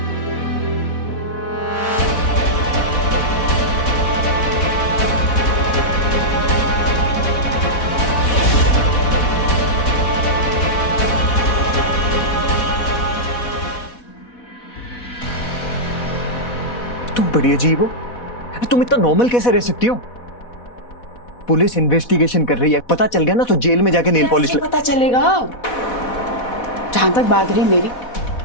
तुम बड़ी अजीब हो, तुम इतना नॉर्मल कैसे रह सकती हो? पुलिस इन्वेस्टिगेशन कर रही है, पता चल गया ना तो जेल में जाके नेल पॉलिश पता चलेगा। जहां तक बात रही मेरी,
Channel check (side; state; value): right; late; 4.1 ms